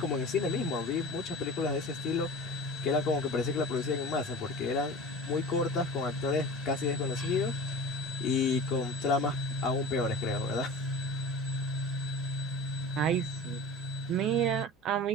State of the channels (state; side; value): normal; both; correlation 0.36